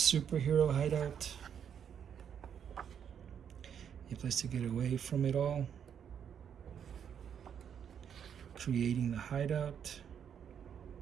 hideout. A place to get away from it all. Creating the hideout.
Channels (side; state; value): left; quieter; 8.2 dB